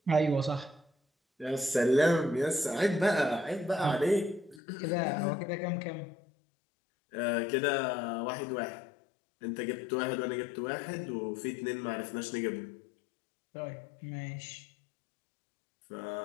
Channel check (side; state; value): right; drops out; at 4.6 s